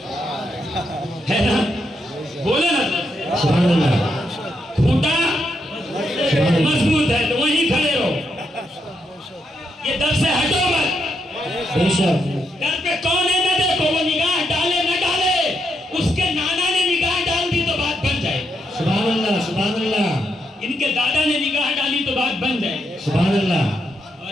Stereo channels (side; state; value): both; normal; correlation 0.80